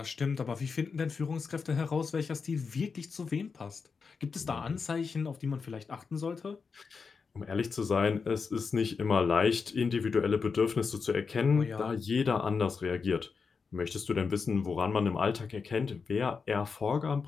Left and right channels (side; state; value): right; quieter; 5.2 dB